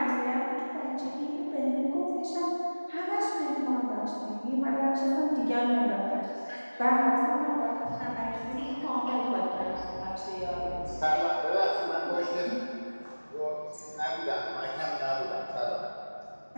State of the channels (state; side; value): inverted; both; correlation -1.00